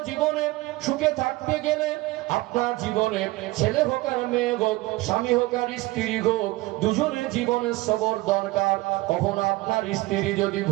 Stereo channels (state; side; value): quieter; left; 20.3 dB